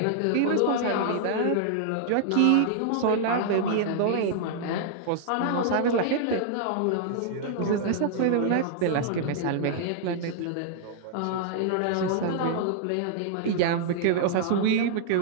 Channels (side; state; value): both; different; correlation -0.01